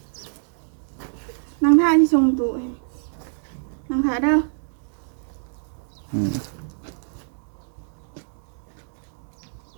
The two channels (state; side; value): silent; left; digital silence